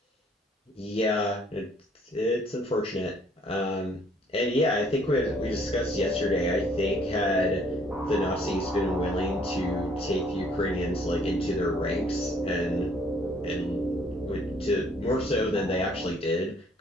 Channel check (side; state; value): both; normal; correlation 0.62